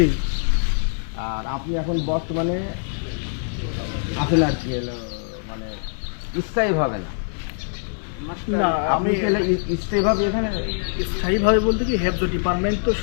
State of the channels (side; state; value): right; silent; digital silence